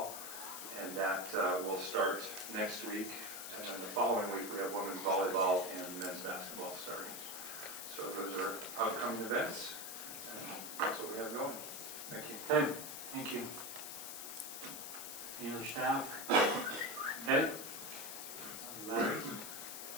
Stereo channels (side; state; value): left; noise; hiss, 7 dB below the sound